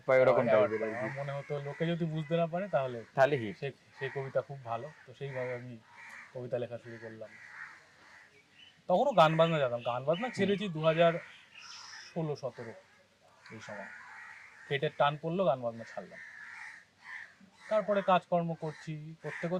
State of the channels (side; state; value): both; identical; correlation 1.00